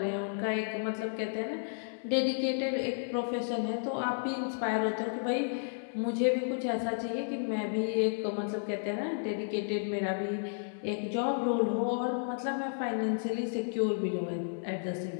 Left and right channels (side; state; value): right; silent; 55 dB below the other